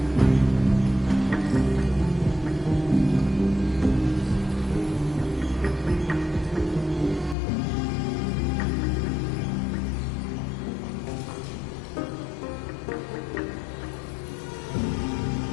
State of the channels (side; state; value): right; drops out; at 7.4 s